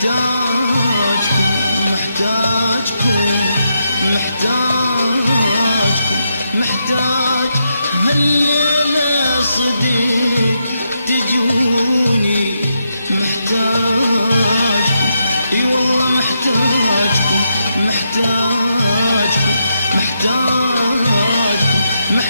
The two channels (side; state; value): both; inverted; correlation -0.82